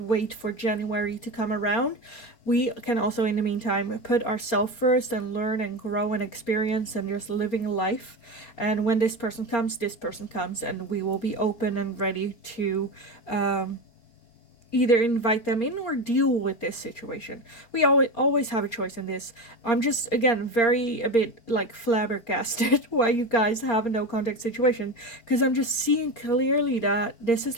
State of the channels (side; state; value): right; late; 4.3 ms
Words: for January to come around. We can also, in the meantime, put ourselves first and learn and grow and experience and just living life. And when this person comes, and we will be open and ready to either invite them in or deal with this situation. We always have a choice in this. I'm just, again, a bit like flabbergasted why you guys have a no contact situation, because I'm just seeing clearly that this is